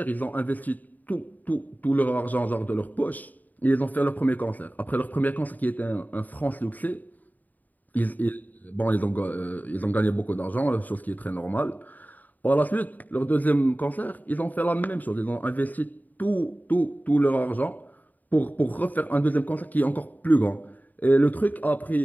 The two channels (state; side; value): late; right; 0.082 ms